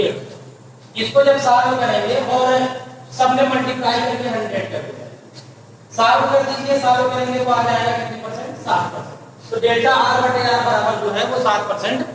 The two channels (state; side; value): identical; both; correlation 1.00